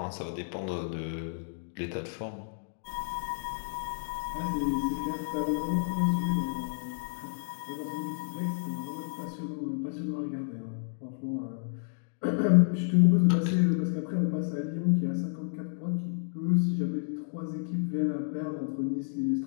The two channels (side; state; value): right; silent; digital silence